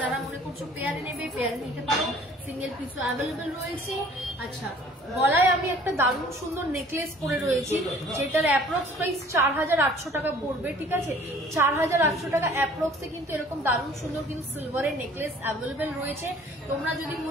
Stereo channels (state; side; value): normal; both; correlation 0.52